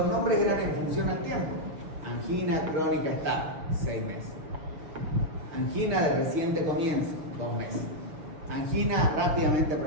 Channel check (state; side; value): late; left; 6.4 ms